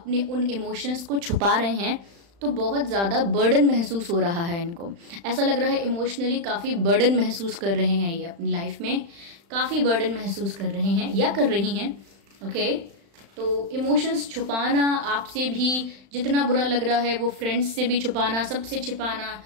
उन इमोशंस को छुपा रहे हैं तो बहुत ज़्यादा बर्डन महसूस हो रहा है इनको। ऐसा लग रहा है इमोशनली काफ़ी बर्डन महसूस कर रहे हैं, ये अपनी लाइफ में काफ़ी बर्डन महसूस कर रहे हैं या कर रही हैं। ओके, तो इमोशंस छुपाना आपसे भी जितना बुरा लग रहा है, वो फ्रेंड्स से भी छुपाना, सबसे छिपाना,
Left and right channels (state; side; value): late; left; 35 ms